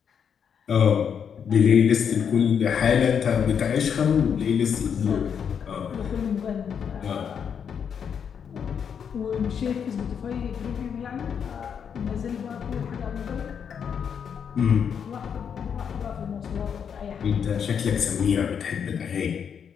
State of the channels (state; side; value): quieter; right; 7.4 dB